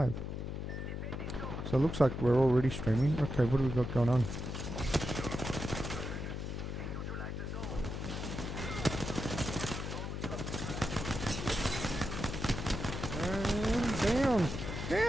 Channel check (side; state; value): left; noise; hum, 4 dB below the sound